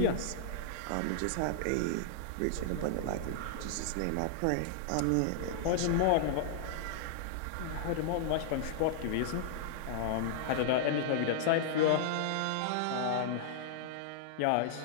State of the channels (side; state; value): both; different; correlation -0.01